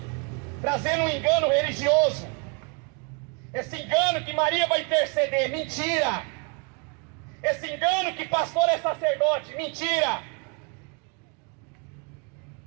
trazendo um engano religioso. Esse engano que Maria vai interceder, mentira. Esse engano que pastor é sacerdote, mentira.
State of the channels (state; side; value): quieter; left; 33.7 dB